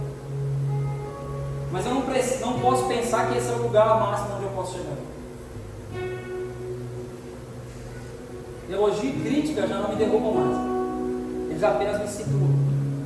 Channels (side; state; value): both; identical; correlation 1.00